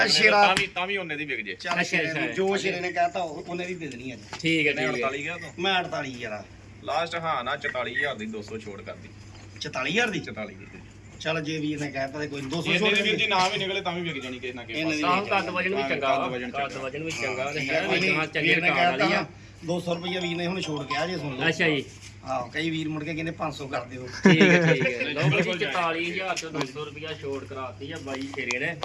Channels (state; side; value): identical; both; correlation 1.00